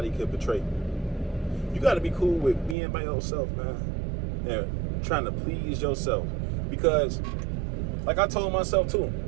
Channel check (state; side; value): drops out; left; at 2.8 s